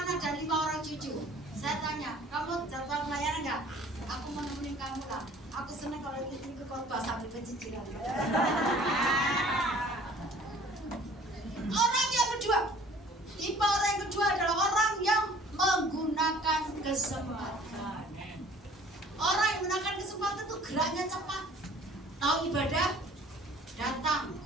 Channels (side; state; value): both; normal; correlation 0.52